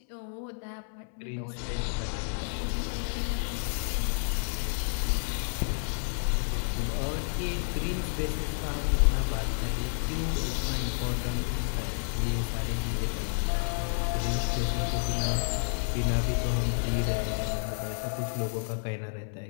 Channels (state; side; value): silent; right; 58 dB below the other